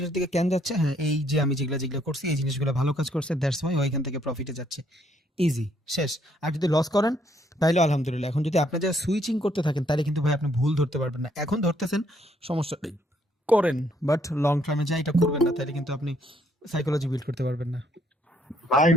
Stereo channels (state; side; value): normal; both; correlation 0.69